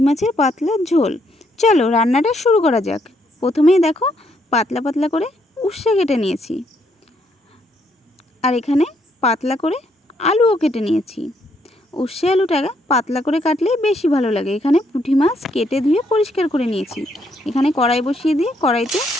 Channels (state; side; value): normal; both; correlation 0.73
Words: মাছের পাতলা ঝোল। চলো রান্নাটা শুরু করা যাক। প্রথমেই দেখো পাতলা পাতলা করে উচ্ছে কেটে নিয়েছি, আর এখানে পাতলা করে আলুও কেটে নিয়েছি। উচ্ছে আলুটা পাতলা করে কাটলেই বেশি ভালো লাগে। এখানে পুঁটি মাছ কেটে ধুয়ে পরিষ্কার করে নিয়েছি। এখানে কড়াই বসিয়ে দিয়ে কড়াইতে